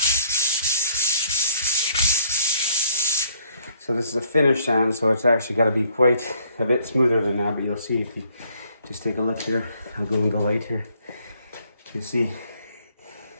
So this is a finished sand, so it's actually got to be quite a bit smoother than that, but you'll see if you just take a look here. I'll go in the light here. You see,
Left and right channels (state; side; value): inverted; both; correlation -0.63